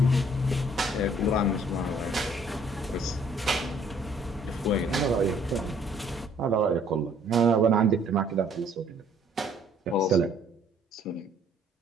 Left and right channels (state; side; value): normal; both; correlation 0.61